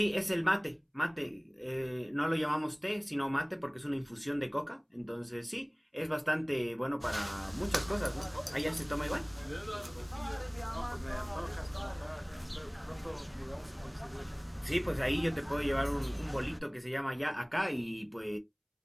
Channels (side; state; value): both; identical; correlation 1.00